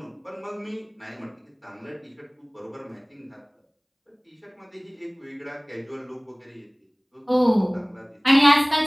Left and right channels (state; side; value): identical; both; correlation 1.00